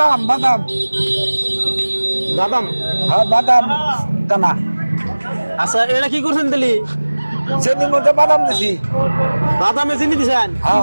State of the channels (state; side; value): inverted; both; correlation -1.00